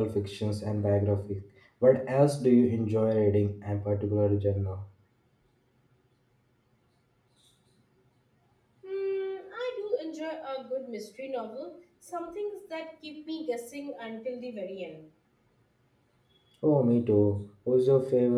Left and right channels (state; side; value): identical; both; correlation 1.00